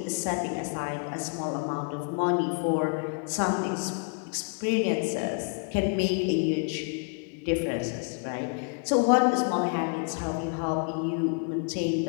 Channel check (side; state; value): right; quieter; 39.2 dB